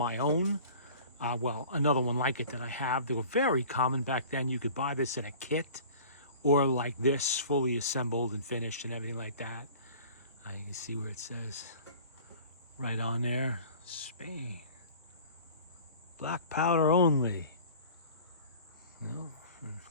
own. Well, another one like it that I have. They were very common back then. You could buy this in a kit or like this, fully assembled and finished and everything like that. You can see where it says right on there, Spain. Black powder only. You know, and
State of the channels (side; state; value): both; inverted; correlation -0.44